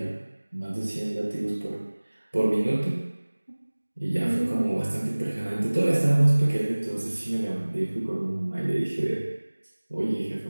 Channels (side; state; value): both; inverted; correlation -1.00